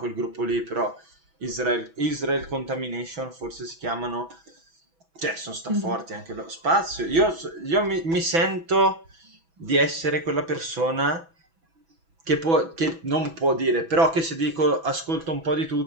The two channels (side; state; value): left; late; 6.1 ms